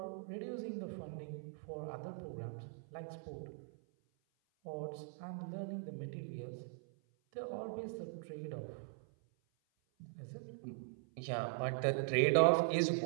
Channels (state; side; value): silent; left; 50 dB below the other